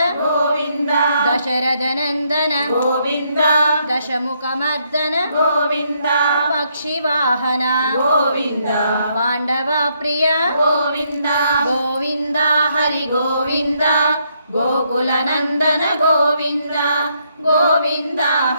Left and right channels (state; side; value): inverted; both; correlation -0.74